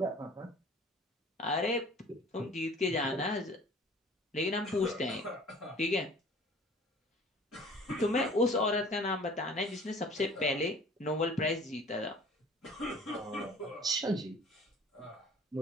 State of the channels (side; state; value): both; normal; correlation 0.48